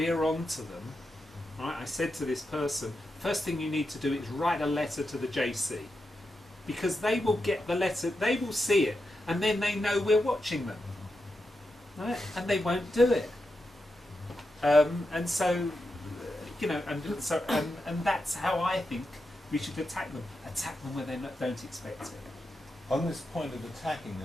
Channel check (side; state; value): both; normal; correlation 0.87